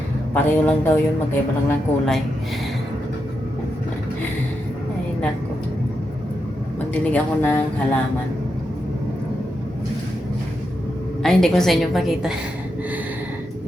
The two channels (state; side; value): normal; both; correlation 0.85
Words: Pareho lang daw yun, magkaiba lang ng kulay. Ay, nako. Magdilig ako ng halaman. Ay, hindi ko sa inyo pakita.